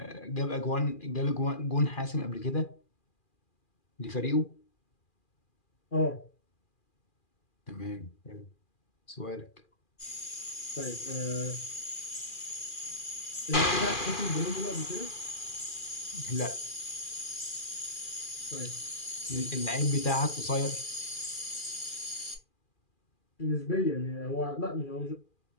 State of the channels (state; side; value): late; right; 2.4 ms